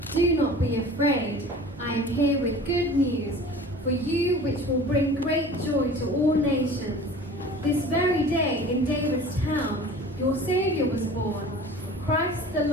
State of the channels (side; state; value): both; normal; correlation 0.42